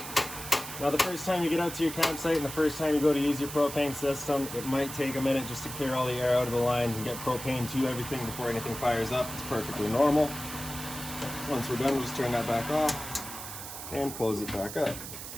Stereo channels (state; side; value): noise; right; hiss, 9 dB below the sound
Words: Now the first time you get out to your campsite and the first time you go to use your propane system, it might take a minute just to clear all the air out of the lines and get propane to everything before anything fires up. It's perfectly normal. Once we're done, we'll just turn that back off and close it back up.